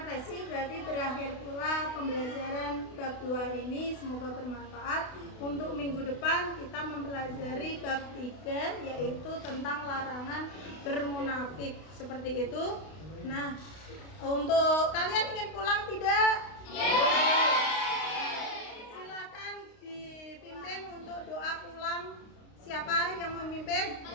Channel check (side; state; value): right; late; 32 ms